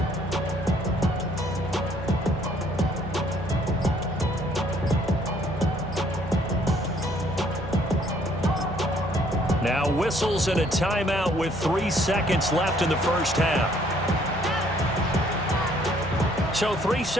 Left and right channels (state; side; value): normal; both; correlation 0.63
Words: Now whistles and a timeout with 3 seconds left in the first half. So 3